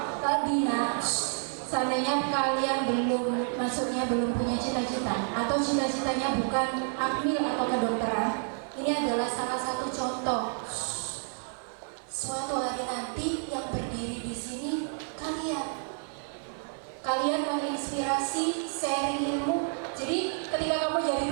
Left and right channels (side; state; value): left; silent; 58 dB below the other